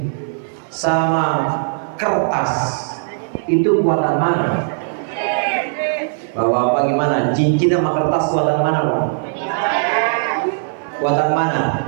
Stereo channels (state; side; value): silent; left; 55 dB below the other